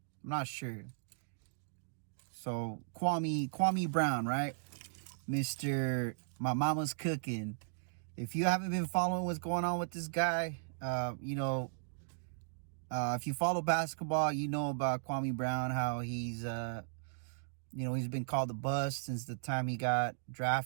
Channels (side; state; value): left; silent; digital silence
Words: I'm not sure. So, Kwame Brown, right? Mr. My Mama's Cooking. If you haven't been following what's going on with this guy, if you follow basketball, you know about Kwame Brown, how he's he's been called the bust since the time he got